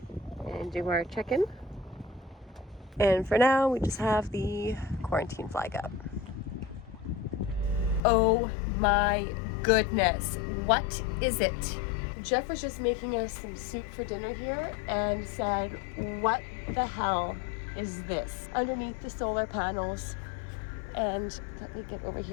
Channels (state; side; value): drops out; right; at 8.0 s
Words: and do our check-in. And for now, we just have the quarantine flag up. Oh my goodness, what is it? Jeff was just making us some soup for dinner here and said, what the hell is this? Underneath the solar panels. And let me get over